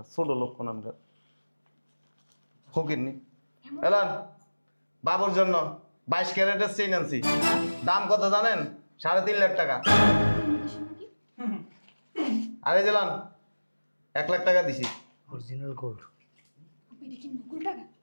ছোট লোক কোন আমরা ফকিরনি এলান বাবুর জন্য 22 ক্যারেটের চেইন আনছি দাম কত জানেন 3.5 লাখ টাকা আরে জেলান 1 লাখ টাকা দিছি অরিজিনাল গোল্ড আপনি দেখি নকল টাকা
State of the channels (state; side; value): inverted; both; correlation -1.00